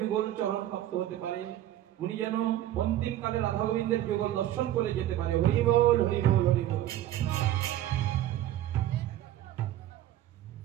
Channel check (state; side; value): quieter; left; 13.1 dB